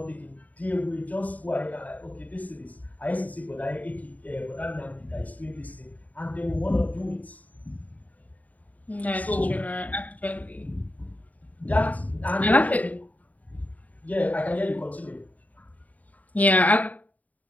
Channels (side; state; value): right; late; 0.073 ms